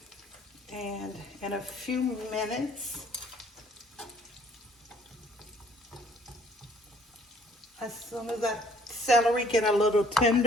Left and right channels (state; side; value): normal; both; correlation 0.59